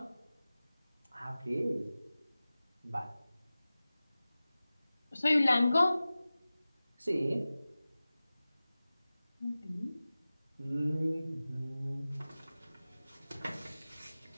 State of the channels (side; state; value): both; inverted; correlation -0.97